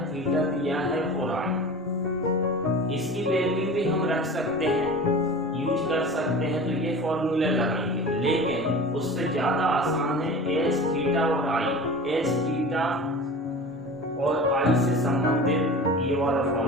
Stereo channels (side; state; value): both; normal; correlation 0.35